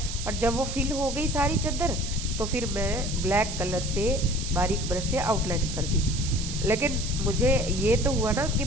और जब वो फिल हो गई सारी चादर, तो फिर मैं ब्लैक कलर से बारीक ब्रश से आउटलाइन कर दी। लेकिन मुझे ये तो हुआ ना कि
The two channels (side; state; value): right; noise; hiss, 7 dB below the sound